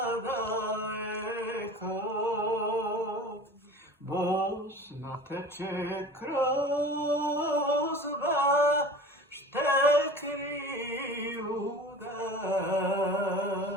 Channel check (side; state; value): both; normal; correlation 0.39